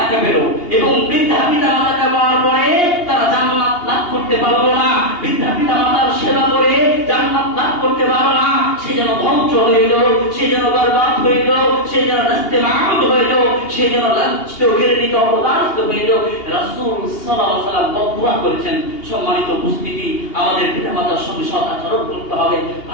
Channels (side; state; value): right; late; 2.8 ms